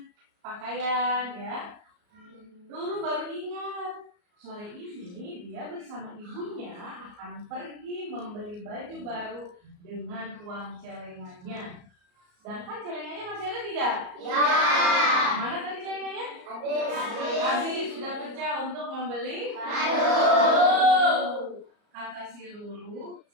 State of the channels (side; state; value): left; late; 34 ms